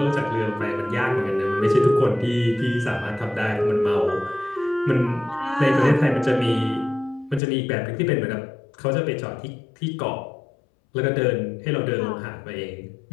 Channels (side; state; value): right; drops out; at 7.4 s